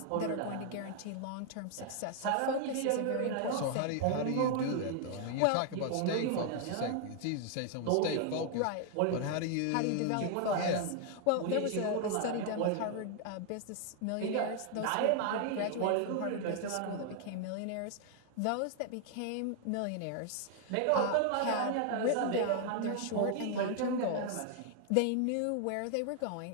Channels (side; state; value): both; different; correlation 0.00